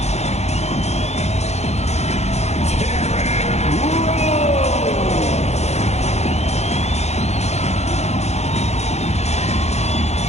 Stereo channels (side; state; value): right; late; 0.32 ms